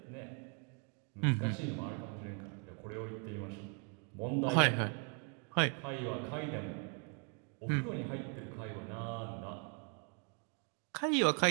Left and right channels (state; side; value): quieter; left; 39.4 dB